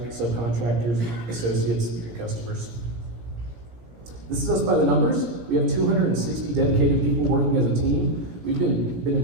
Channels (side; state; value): left; late; 17 ms